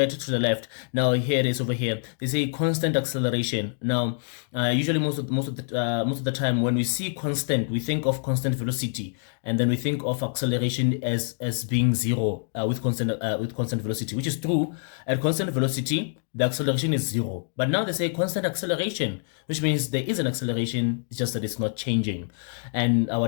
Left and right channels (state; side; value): silent; right; 61 dB below the other